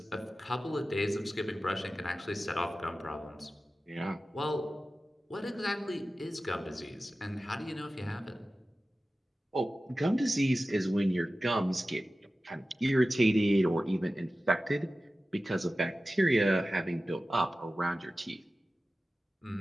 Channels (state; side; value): normal; both; correlation 0.95